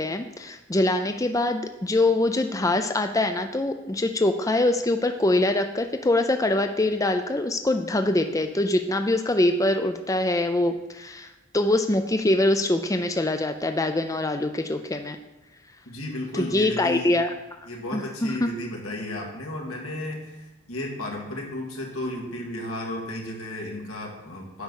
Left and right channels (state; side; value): normal; both; correlation 0.65